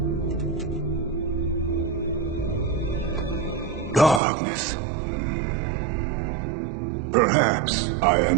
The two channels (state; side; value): drops out; left; at 4.2 s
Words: Darkness. Perhaps I